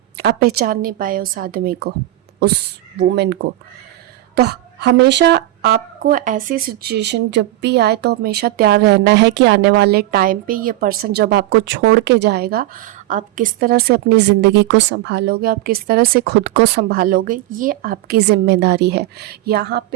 आप पहचान नहीं पाए उस आदमी को, उस वुमेन को। तो हमेशा आपको ऐसी सिचुएशन जब भी आए तो हमेशा तैयार रहना है कि आने वाले टाइम पे ये पर्सन जब आपको छोड़ के जाएगा, आप किस तरह से अपनी ज़िंदगी को संभालोगे, आप किस तरह से खुद को संभालोगे, ये आपकी ज़िम्मेदारी है। यहाँ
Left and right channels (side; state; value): left; quieter; 15.7 dB